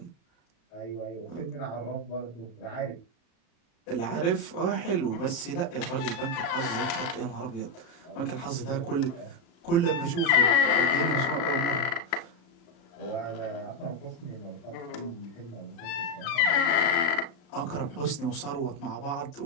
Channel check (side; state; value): right; late; 35 ms